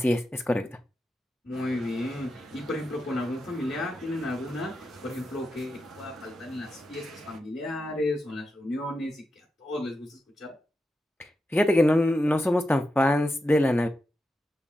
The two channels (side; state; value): both; normal; correlation 0.88